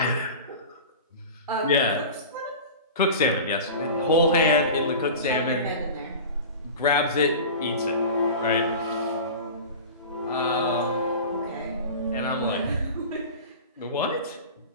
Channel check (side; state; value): both; inverted; correlation -0.34